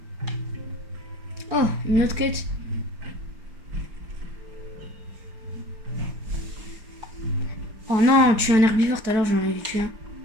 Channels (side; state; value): left; late; 4.7 ms